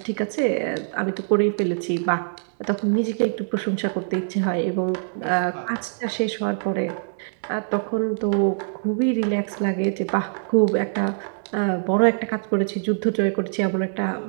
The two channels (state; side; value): silent; left; digital silence